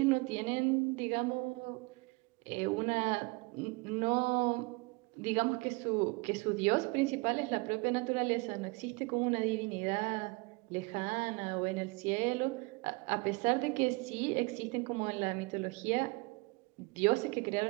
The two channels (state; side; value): quieter; left; 27.2 dB